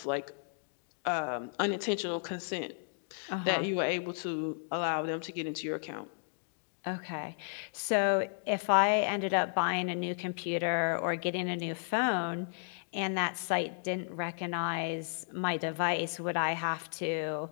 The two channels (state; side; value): silent; right; digital silence